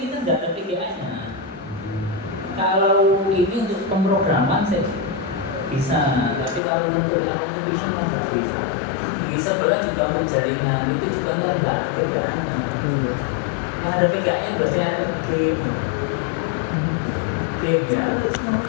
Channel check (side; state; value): right; drops out; at 6.6 s